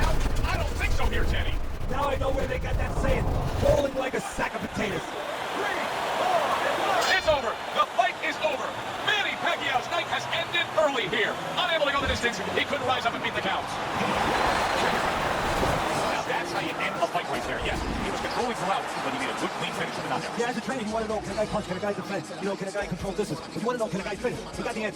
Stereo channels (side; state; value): both; identical; correlation 1.00